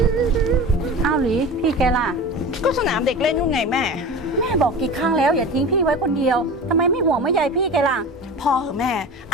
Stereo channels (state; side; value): normal; both; correlation 0.32